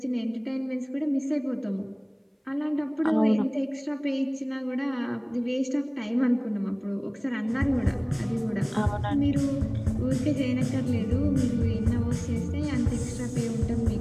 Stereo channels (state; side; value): identical; both; correlation 1.00